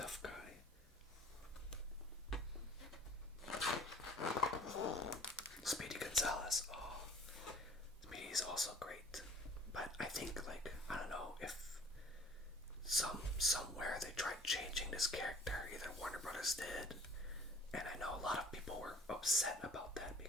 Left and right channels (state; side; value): normal; both; correlation 0.53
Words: guy. Speedy Gonzales. Oh, Speedy's also great. But I think, like, I don't know if somewhere they tried changing this character. Either Warner Brothers did, and I know a lot of people were upset about that